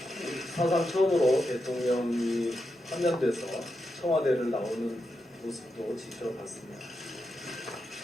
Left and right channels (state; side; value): normal; both; correlation 0.86